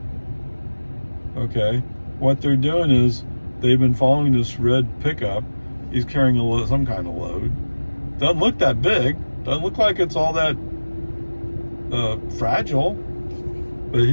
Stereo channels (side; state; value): both; inverted; correlation -1.00